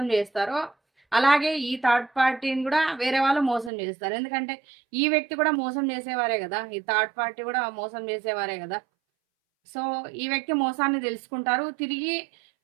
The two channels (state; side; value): drops out; left; at 3.7 s